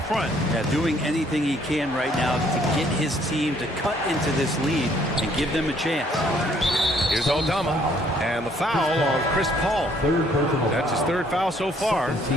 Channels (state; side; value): normal; both; correlation 0.64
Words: Yeah, doing anything he can right now to get his team to cut into this lead and give them a chance. Here's Aldama. And the foul on Chris Paul. That's his 3rd foul so far.